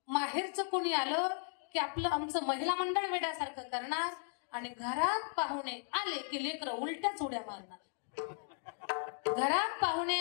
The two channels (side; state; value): right; silent; 54 dB below the other